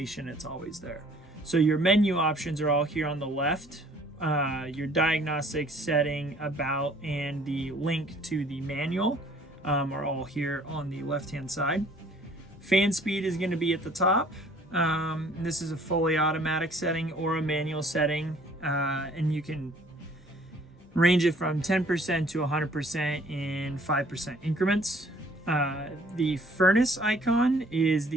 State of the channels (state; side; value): normal; both; correlation 0.56